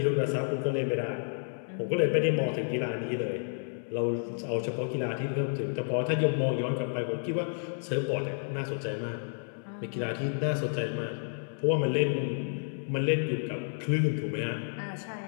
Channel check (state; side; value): silent; right; 57 dB below the other